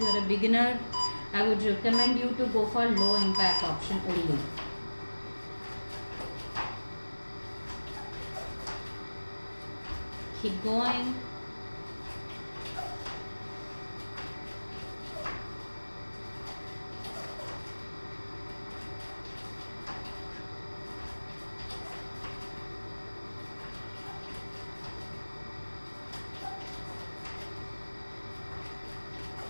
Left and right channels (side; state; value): both; inverted; correlation -1.00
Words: are a beginner, I would recommend you to go for low impact option only. Keep going.